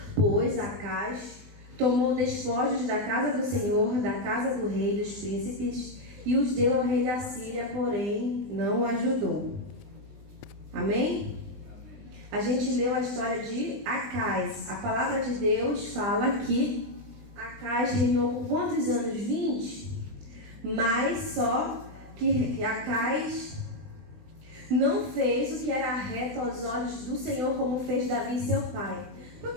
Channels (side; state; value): left; late; 20 ms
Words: Pois Acais tomou despojos da casa do Senhor, da casa do rei, dos príncipes, e os deu ao rei da Síria, porém não o ajudou. Amém? A gente leu a história de Acais. A palavra de Deus fala que Acais reinou por quantos anos? 20. Mas só que Acais não fez o que era reto aos olhos do Senhor, como fez Davi, seu pai.